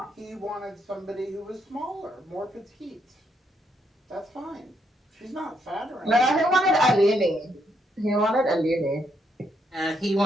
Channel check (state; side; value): normal; both; correlation 0.76